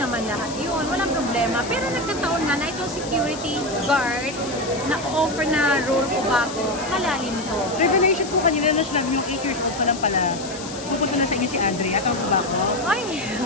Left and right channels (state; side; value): noise; left; hiss, 12 dB below the sound